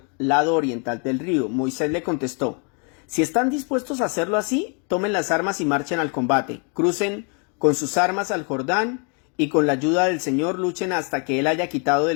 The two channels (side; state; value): right; quieter; 37.8 dB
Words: lado oriental del río. Moisés le contestó: si están dispuestos a hacerlo así, tomen las armas y marchen al combate. Crucen con sus armas al Jordán y con la ayuda del Señor luchen hasta que Él haya quitado